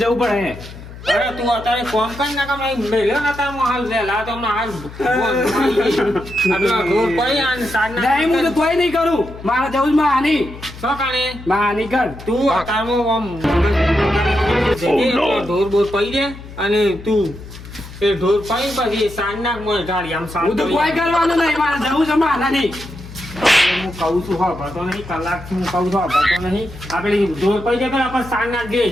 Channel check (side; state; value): left; noise; hum, 15 dB below the sound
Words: જવું પડે. અરે તું અત્યારે કોમ કઈ ના કામ મેલ્યો ને તાર હાલ વહેલા તો હમણાં હાલ ઢોર પડી અને સાંજ નહીં હું તો કોઈ નહીં કરું. મારે જવું જ હાની. શું કાણે હાની કર તું અત્યારમાં ઢોર બોર પડી દે અને તું એ ઢોર પડી પછી સાંજ નાખ મને ઢાળી આમ હું તો કોઈ કરવાનું નહીં. મારે જવું છે હાની. હું કહું છું હા ભરતો નહીં કલાકથી હું કહું છું હા ભરતો નહીં આપણે ઢોર પડી જાય આપણે સાંજ નાખ દે